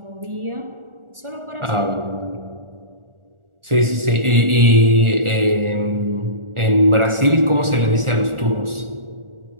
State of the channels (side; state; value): left; late; 1.4 ms